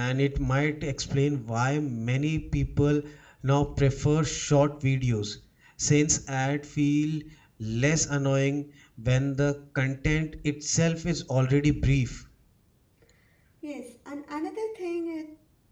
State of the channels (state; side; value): identical; both; correlation 1.00